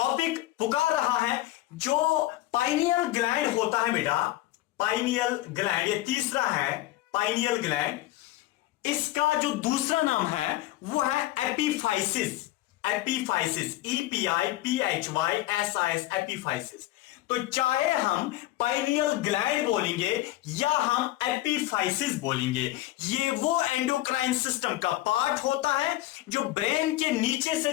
पुकार रहा है जो पाइनियल ग्लैंड होता है बेटा, पाइनियल ग्लैंड, ये तीसरा है पाइनियल ग्लैंड। इसका जो दूसरा नाम है वो है एपिफाइसिस। Epiphysis, EPIPHYSIS, epiphysis. तो चाहे हम पाइनियल ग्लैंड बोलेंगे या हम एपिफाइसिस बोलेंगे, ये वो एंडोक्राइन सिस्टम का पार्ट होता है जो ब्रेन के नीचे से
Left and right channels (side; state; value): right; quieter; 16.3 dB